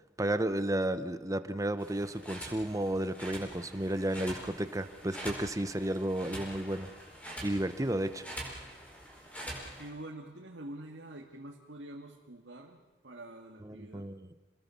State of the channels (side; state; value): both; normal; correlation 0.77